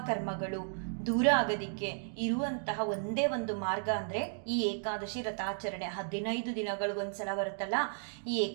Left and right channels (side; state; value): left; silent; digital silence